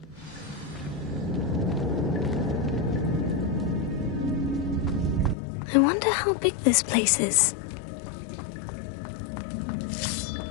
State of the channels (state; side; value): drops out; right; at 5.4 s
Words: I wonder how big this place is.